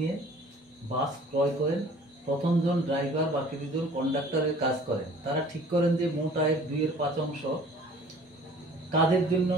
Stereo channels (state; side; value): normal; both; correlation 0.50